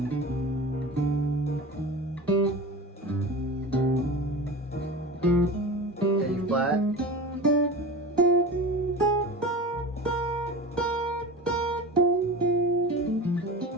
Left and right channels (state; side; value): normal; both; correlation 0.31